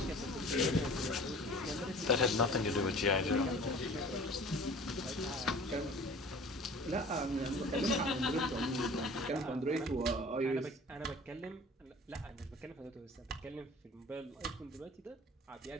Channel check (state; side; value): normal; both; correlation 0.44